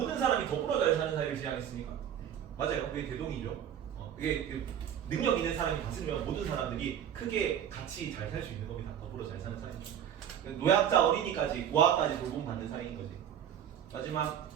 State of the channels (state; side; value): quieter; left; 9.5 dB